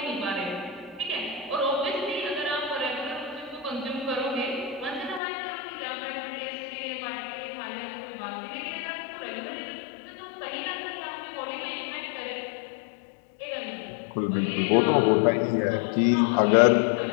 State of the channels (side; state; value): right; drops out; at 5.2 s